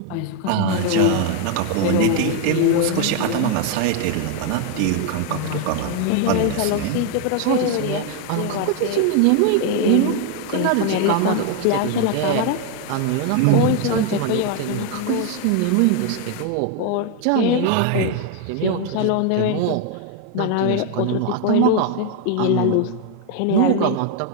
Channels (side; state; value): both; different; correlation 0.01